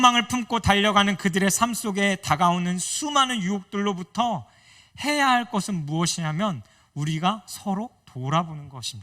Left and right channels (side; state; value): both; identical; correlation 1.00